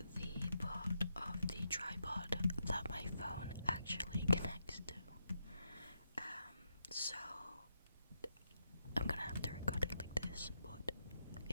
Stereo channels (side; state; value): both; inverted; correlation -0.84